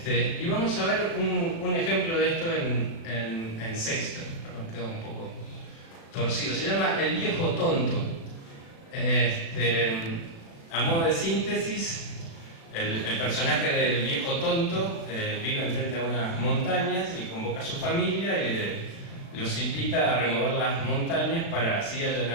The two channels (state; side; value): late; right; 36 ms